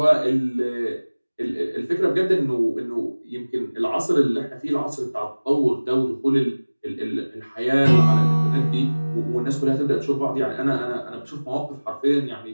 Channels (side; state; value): both; inverted; correlation -1.00